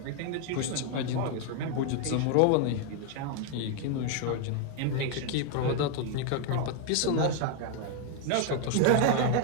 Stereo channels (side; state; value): both; different; correlation 0.00